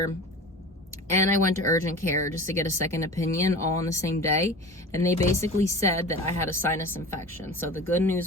and I went to urgent care just to get a second opinion all on the same day. And they basically said that I had a sinus infection. So the good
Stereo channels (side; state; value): both; normal; correlation 0.35